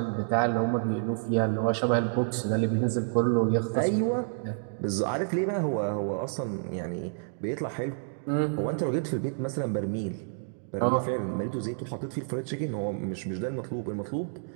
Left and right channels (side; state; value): left; silent; digital silence